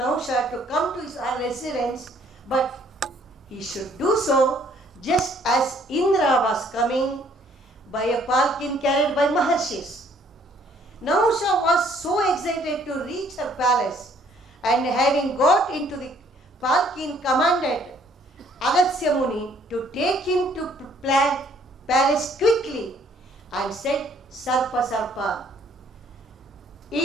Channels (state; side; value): normal; both; correlation 0.62